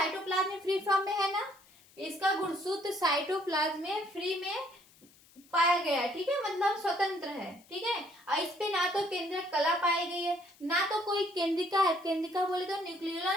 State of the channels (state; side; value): noise; left; hiss, 27 dB below the sound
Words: में फ्री फॉर्म में है ना, इसका गुणसूत्र साइटोप्लाज्म में फ्री में पाया गया है। ठीक है, मतलब स्वतंत्र है। ठीक है, और इस पे ना तो केंद्रक कला पाई गई है, ना तो कोई केंद्रिका है, केंद्रिका बोले तो